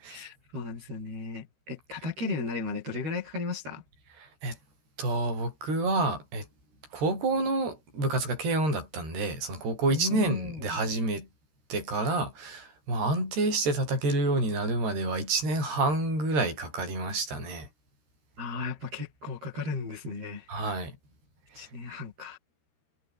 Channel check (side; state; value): left; late; 13 ms